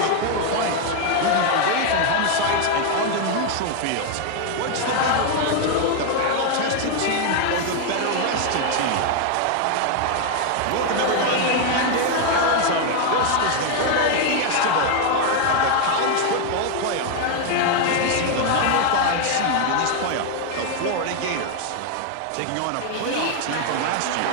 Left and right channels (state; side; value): different; both; correlation 0.01